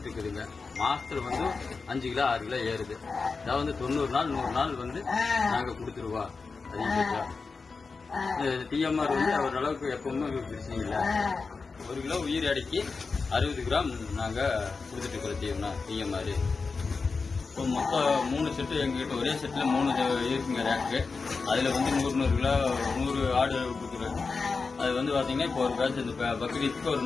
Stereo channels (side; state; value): right; quieter; 4.5 dB